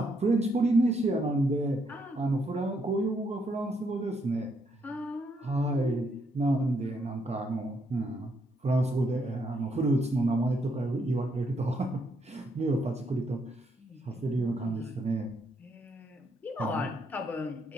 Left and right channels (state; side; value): normal; both; correlation 0.75